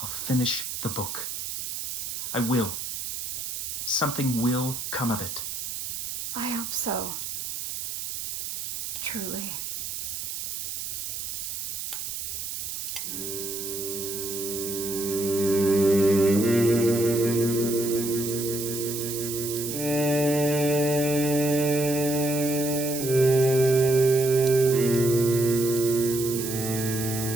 finish the book. I will. Something will come of it. I hope so. Truly.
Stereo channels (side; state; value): right; noise; hiss, 5 dB below the sound